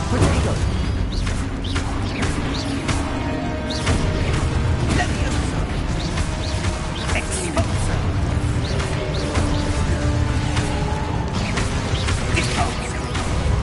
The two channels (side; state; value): both; identical; correlation 1.00